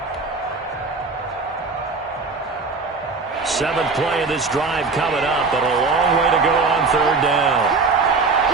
Seventh play of this drive coming up, but a long way to go on 3rd down.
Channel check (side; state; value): left; quieter; 4.2 dB